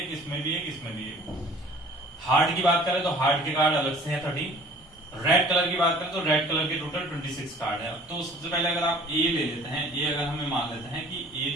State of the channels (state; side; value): normal; both; correlation 0.50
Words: इसमें भी एक, इसमें भी एक। हार्ट की बात करें तो हार्ट के कार्ड अलग से हैं 13। रेड कलर की बात करें तो रेड कलर के टोटल 26 कार्ड है। तो सबसे पहले अगर आप ए ले लेते हैं, ए अगर हमें मान लेते हैं कि ए